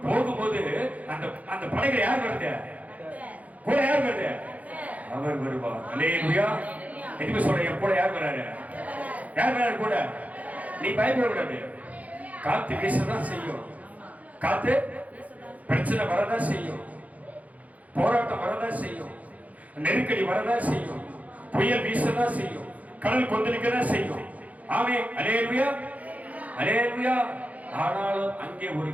போகும்போது அந்த படகுல யார் வருது? கூட யார் வருது? அவர் வருவார். அல்லேலூயா. எதுக்கு சொல்றேன்? என் கூட யார் வராரு? யார் வராரு கூட? நீ பயப்படக்கூடாது. காத்து வீசதான் செய்யும். காத்து பிரச்சனை வரதான் செய்யும். போராட்டம் வரதான் செய்யும். நெருக்கடி வரதான் செய்யும். புயல் வீசதான் செய்யும். கடல் கொந்தளிக்கதான் செய்யும். ஆமென், அல்லேலூயா, அல்லேலூயா. ஆனாலும் அங்கே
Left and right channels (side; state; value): left; late; 0.072 ms